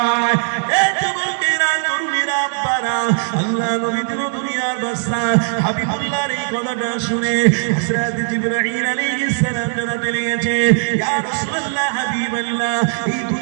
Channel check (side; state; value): left; silent; 67 dB below the other